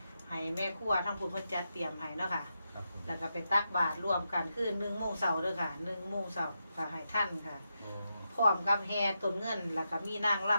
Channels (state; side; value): inverted; both; correlation -0.86